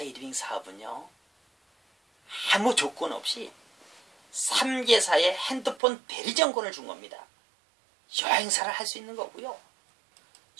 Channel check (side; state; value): left; drops out; at 5.8 s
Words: 사업은요. 아무 조건 없이 3개사의 핸드폰 대리점권을 준 겁니다. 여행사를 할 수 있는 거고요.